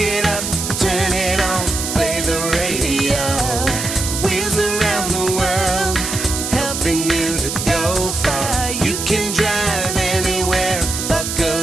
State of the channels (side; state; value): right; noise; hiss, 4 dB below the sound